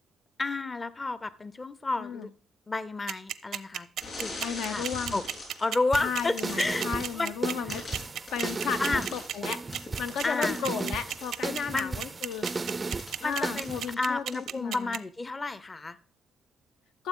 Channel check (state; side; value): normal; both; correlation 0.81